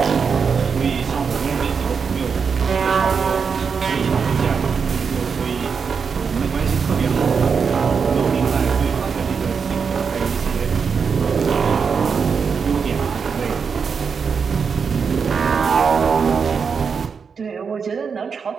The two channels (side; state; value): left; quieter; 5.9 dB